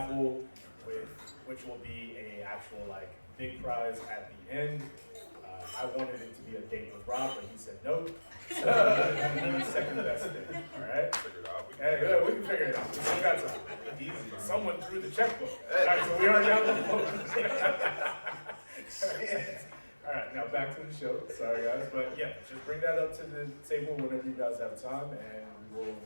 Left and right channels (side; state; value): both; inverted; correlation -1.00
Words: which will be a actual like big prize at the end. I wanted it to be a date with Rob, but he said no. So the second best thing. All right. Figure it out. Hey, we can figure it out. We still got time. Easy. Someone threw the checkbook. All right, so we already have the All right, now back to the show. Sorry, guys, but yeah, just bring that up to the table whenever you guys have time, and we will